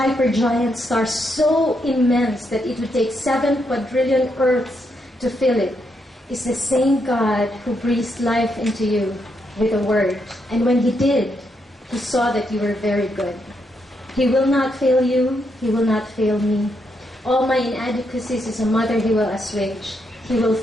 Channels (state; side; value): normal; both; correlation 0.79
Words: star so immense that it would take 7 quadrillion Earths to fill it, is the same God who breathed life into you with a word. And when He did, He saw that you were very good. He will not fail you. He will not fail me. All my inadequacies as a mother He will assuage. He will